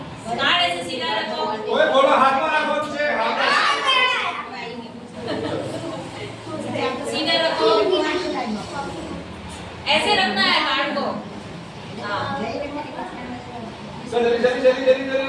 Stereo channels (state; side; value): identical; both; correlation 1.00